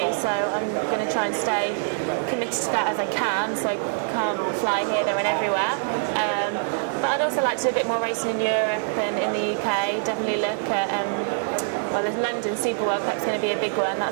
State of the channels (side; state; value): left; silent; digital silence